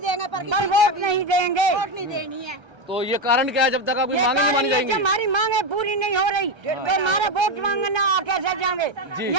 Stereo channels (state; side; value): late; left; 1.3 ms